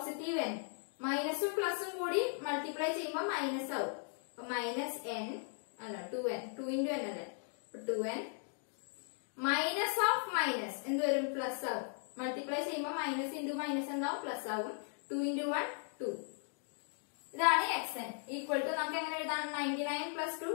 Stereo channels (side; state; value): right; silent; 53 dB below the other